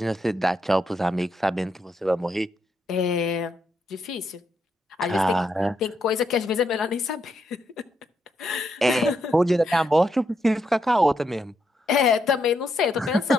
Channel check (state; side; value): normal; both; correlation 0.80